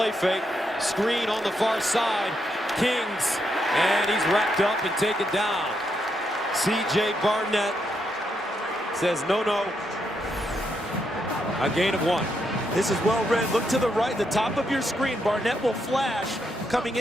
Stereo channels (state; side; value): normal; both; correlation 0.80